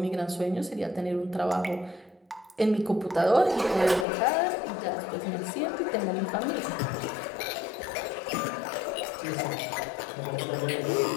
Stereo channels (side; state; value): right; drops out; at 4.0 s